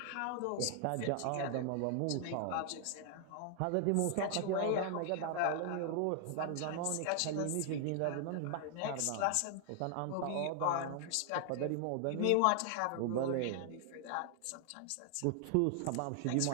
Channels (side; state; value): both; different; correlation 0.00